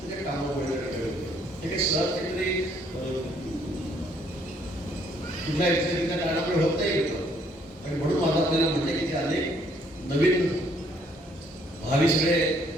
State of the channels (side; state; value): both; normal; correlation 0.66